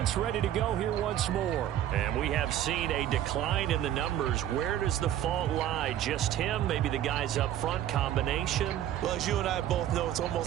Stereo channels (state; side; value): quieter; left; 11.6 dB